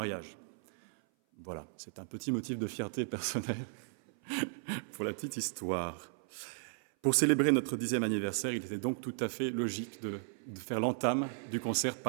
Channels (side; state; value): left; silent; 54 dB below the other